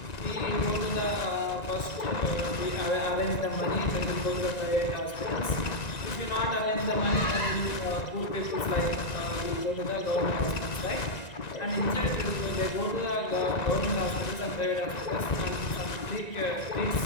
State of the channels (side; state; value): right; late; 1.9 ms